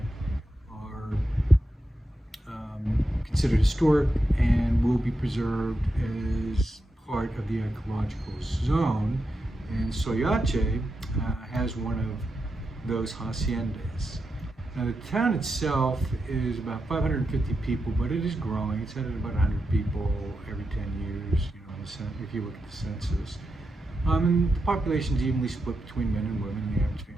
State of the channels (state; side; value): normal; both; correlation 0.87